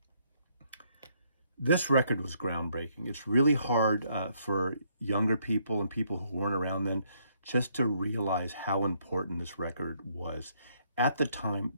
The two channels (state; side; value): inverted; both; correlation -0.70